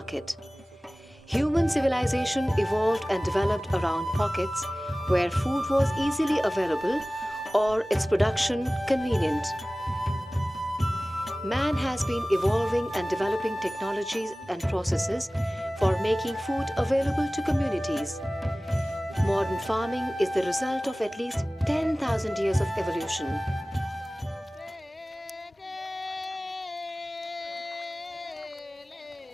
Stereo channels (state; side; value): normal; both; correlation 0.98